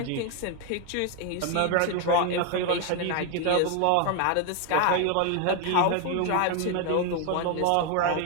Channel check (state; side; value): different; both; correlation 0.01